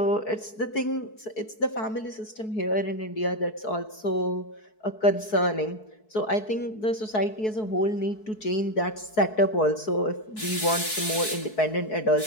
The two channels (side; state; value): right; late; 4.6 ms